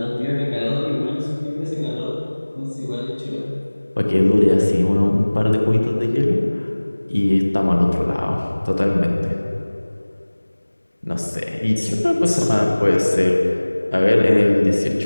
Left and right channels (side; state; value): both; inverted; correlation -1.00